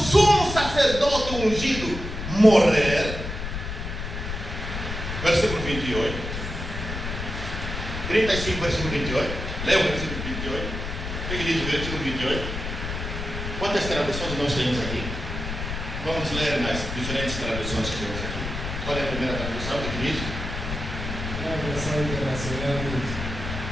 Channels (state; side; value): noise; left; rumble, 6 dB below the sound